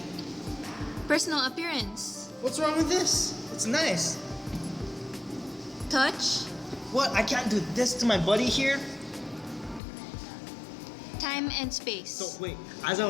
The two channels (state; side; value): drops out; right; at 9.8 s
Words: personal appearance, What's wrong with this? It's nice. touch, What? I can't do this to my buddy here? time and space. So wait, as I